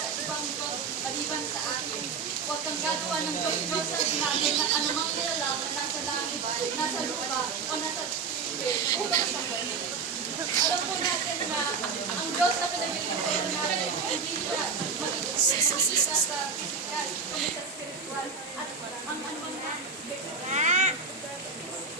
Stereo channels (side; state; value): left; quieter; 5.3 dB